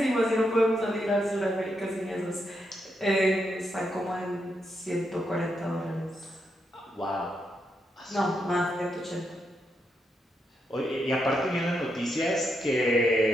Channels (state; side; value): normal; both; correlation 0.82